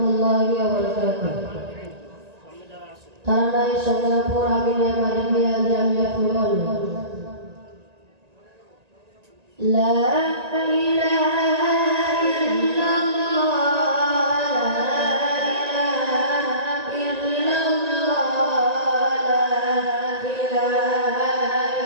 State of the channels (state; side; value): late; left; 1.9 ms